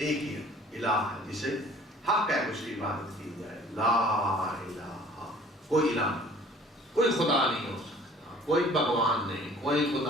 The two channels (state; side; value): normal; both; correlation 0.51